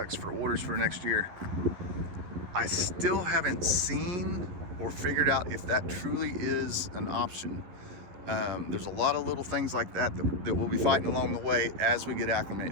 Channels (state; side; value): late; left; 11 ms